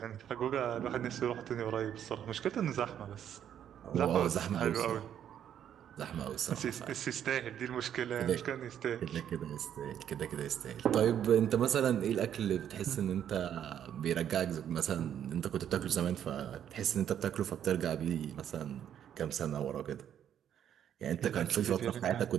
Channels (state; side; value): quieter; left; 9.7 dB